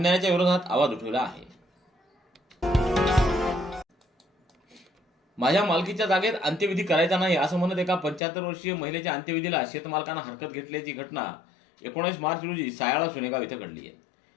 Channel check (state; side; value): drops out; right; at 8.2 s